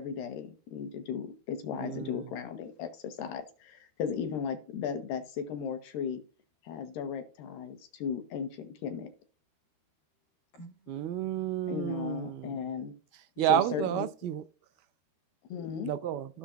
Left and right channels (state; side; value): late; right; 12 ms